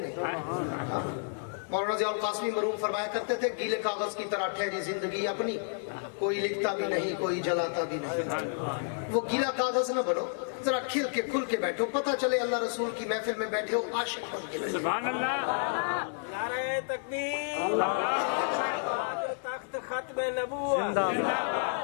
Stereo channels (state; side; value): silent; right; digital silence